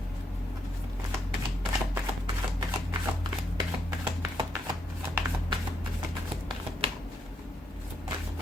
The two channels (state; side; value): normal; both; correlation 0.77